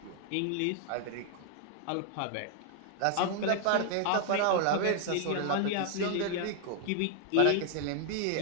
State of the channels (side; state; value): both; different; correlation 0.00